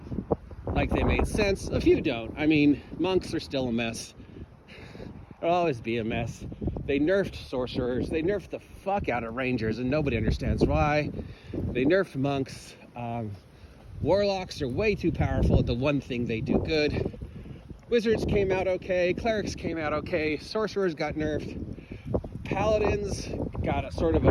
like they made sense. A few don't. I mean, monks are still a mess. They'll always be a mess. They nerfed sorcerers. They nerfed the fuck out of rangers, and nobody understands why. They nerfed monks. Warlocks are way too powerful at the one thing they do good. Wizards came out okay. Clerics came out okay. Sorcerers got nerfed. Paladins got a sort of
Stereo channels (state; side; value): identical; both; correlation 1.00